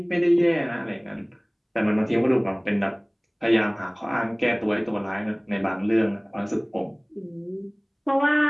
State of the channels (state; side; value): identical; both; correlation 1.00